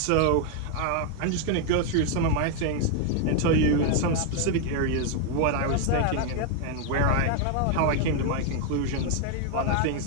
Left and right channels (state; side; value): different; both; correlation 0.01